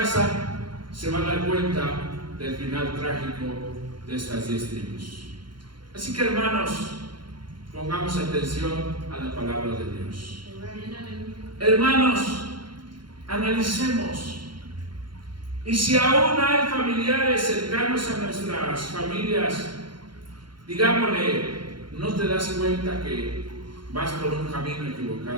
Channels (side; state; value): left; late; 0.72 ms